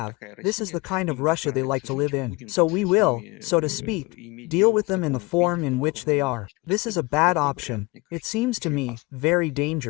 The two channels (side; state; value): right; quieter; 24.3 dB